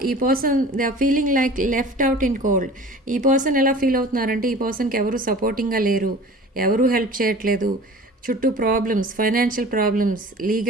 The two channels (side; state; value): both; normal; correlation 0.42